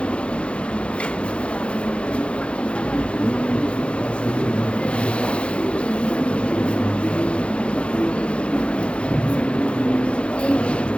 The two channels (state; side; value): late; right; 0.059 ms